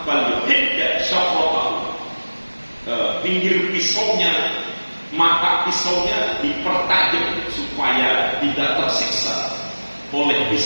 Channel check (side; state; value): both; inverted; correlation -1.00